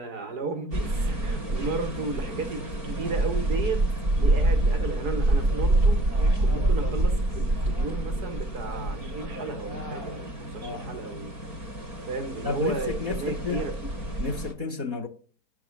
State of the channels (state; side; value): late; left; 4.4 ms